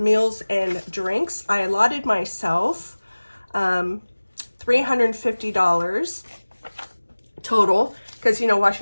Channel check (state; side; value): inverted; both; correlation -1.00